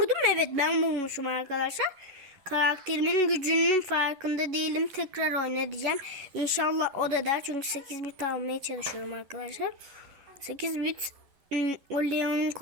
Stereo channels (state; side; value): late; left; 10 ms